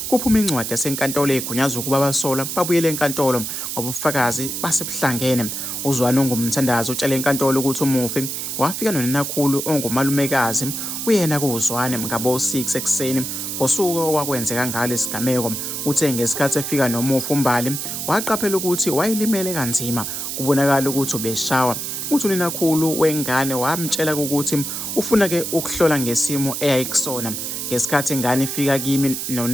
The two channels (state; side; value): noise; right; hiss, 4 dB below the sound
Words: kuphuma incwadi yasenkantolo egunyaza ukuba abasola babuyele enkantolo ngoba ubufakazi basebuhlangene. uZwane ongumthandazo utshela enkantolo ukuthi umufi wafika noninakhulu ongumalumekazi kuyena kuZwane ngabo-6 ekuseni ngosuku okwakwenzeka ngalo isigameko. Uthe ngesikhathi efika nomufi uMbali waqaphela ukuthi wayelimele kanzima, kubonakala ukuthi ubeshawa. Uthi uninakhulu wengane wamtshela ukuthi ufuna-ke ukuhlola ngesimo eyayikusona. Ngesikhathi ingane ifika kimi